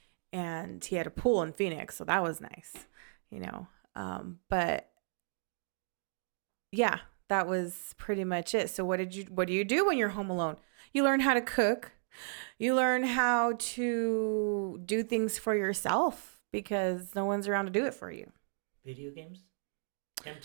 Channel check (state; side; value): silent; left; digital silence